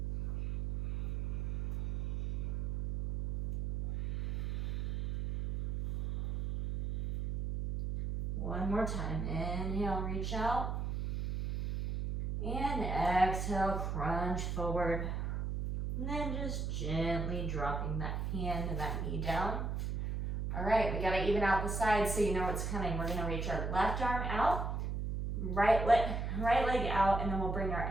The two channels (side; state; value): right; noise; hum, 2 dB below the sound